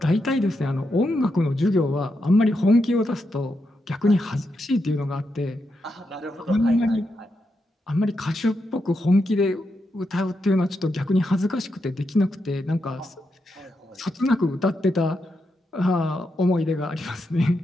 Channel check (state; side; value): normal; both; correlation 0.84